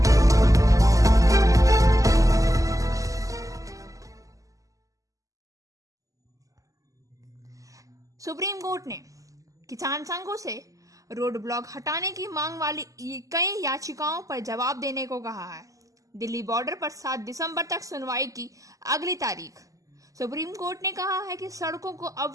सुप्रीम कोर्ट ने किसान संघों से रोड ब्लॉक हटाने की मांग वाली कई याचिकाओं पर जवाब देने को कहा है। दिल्ली बॉर्डर पर 7 दिसंबर तक सुनवाई की अगली तारीख। सुप्रीम कोर्ट ने कहा है कि सड़कों को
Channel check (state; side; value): late; left; 0.16 ms